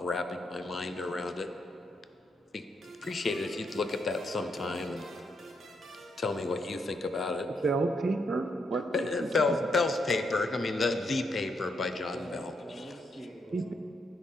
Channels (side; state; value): both; normal; correlation 0.78